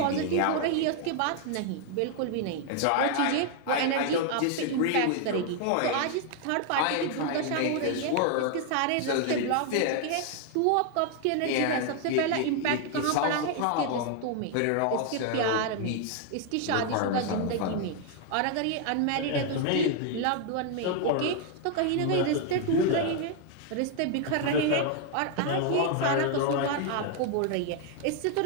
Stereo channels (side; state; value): both; different; correlation 0.00